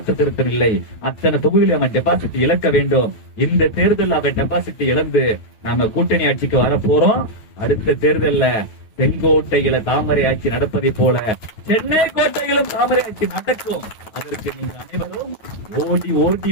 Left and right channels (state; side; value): late; right; 9.2 ms